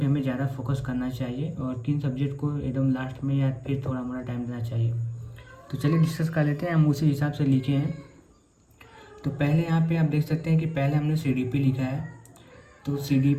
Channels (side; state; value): both; identical; correlation 1.00